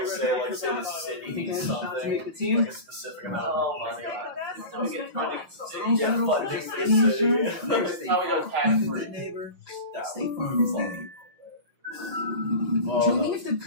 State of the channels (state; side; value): late; left; 6.2 ms